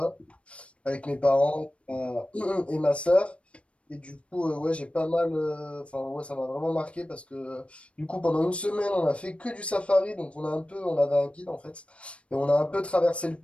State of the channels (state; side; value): late; right; 0.061 ms